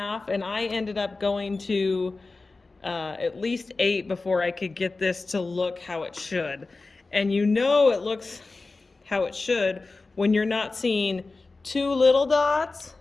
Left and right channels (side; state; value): right; quieter; 3.6 dB